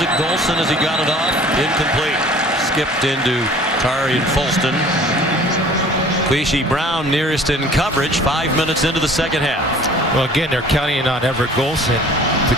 Golson as he got it off. Incomplete. Skipped into Tari and Folston. Queasy Brown nearest in coverage 5 minutes into the second half. Well, again, they're counting on Everett Golson to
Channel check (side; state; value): both; normal; correlation 0.49